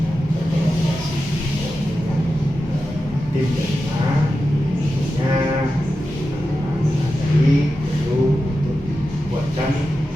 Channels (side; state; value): both; normal; correlation 0.91